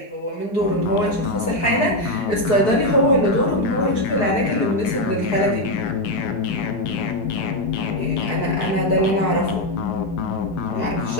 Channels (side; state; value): right; late; 4.7 ms